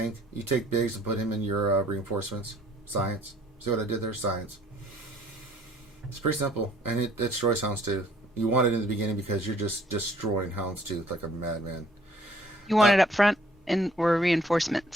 You take Biggs and put him in your reinforcements. Science. See what I did there? Science. It's pretty simple, and it destroys Houndstooth. You want it in the beginning because you're just destroying Houndstooth like a madman. You want it up front or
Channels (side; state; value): both; normal; correlation 0.59